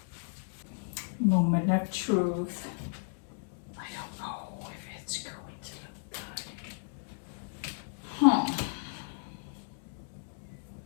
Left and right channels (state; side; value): silent; right; digital silence